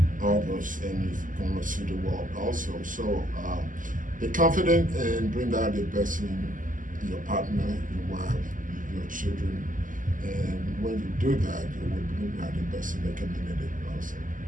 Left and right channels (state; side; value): late; left; 0.38 ms